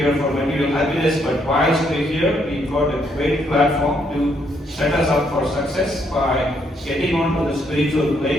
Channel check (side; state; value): both; normal; correlation 0.73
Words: for material happiness, but whilst we're here, we've got a great platform to set us up for success by getting onto the spiritual